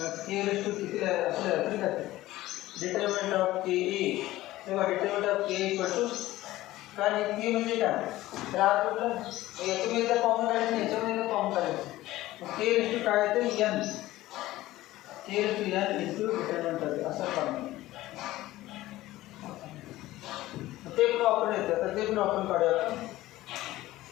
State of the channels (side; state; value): right; quieter; 16.5 dB